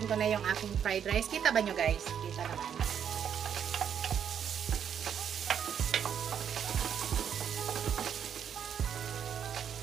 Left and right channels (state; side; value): quieter; left; 8.4 dB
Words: ko na yung aking fried rice. Kita ba nyo guys? Kita naman.